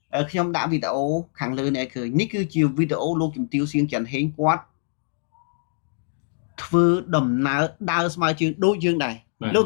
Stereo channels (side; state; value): right; silent; digital silence